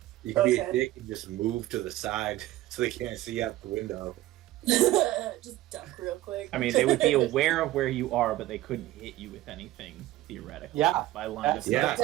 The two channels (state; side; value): quieter; left; 15.7 dB